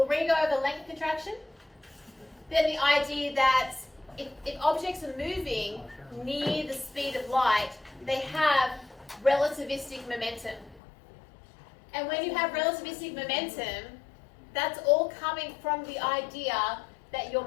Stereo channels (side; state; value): right; drops out; at 10.8 s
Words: re-go over length contraction, then the idea that if objects are moving near the speed of light, they have relativistic momentum. And when you have relativistic momentum, that's all coming from the idea that